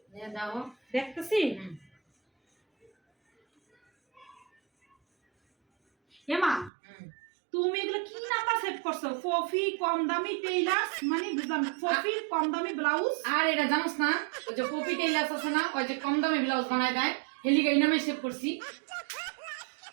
দাও দেখতেছি এমা তুমি এগুলো কি নাম্বার সেভ করছো ফফি কম দামি টেইলার্স মানে বুঝলাম ফফি কম দামি ব্লাউজ আর এটা জানোস না ওই যে পপি টেইলার্স আছে না ওই যে কম দামে ব্লাউজ বানায় দেয় হেলিগা এই নামে সেভ করছি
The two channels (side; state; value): left; drops out; at 6.7 s